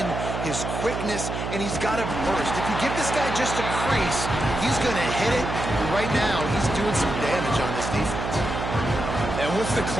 his quickness, and he's got a burst. If you give this guy just a crease, he's going to hit it. Right now, he's doing some damage on this defense. And what's the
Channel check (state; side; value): noise; right; hum, 4 dB below the sound